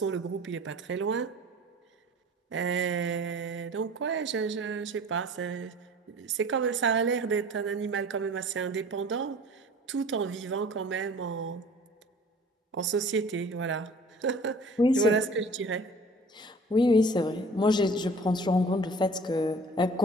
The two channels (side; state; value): both; normal; correlation 0.46